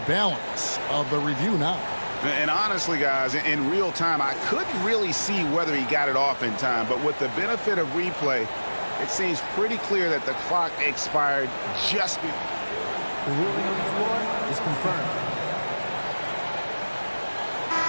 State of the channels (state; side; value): inverted; both; correlation -1.00